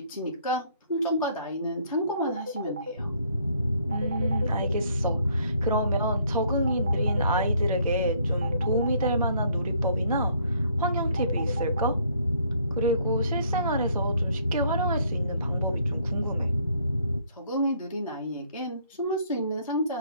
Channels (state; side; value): inverted; both; correlation -0.64